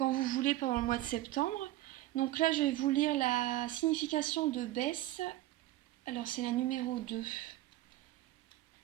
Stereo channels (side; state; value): left; quieter; 15.8 dB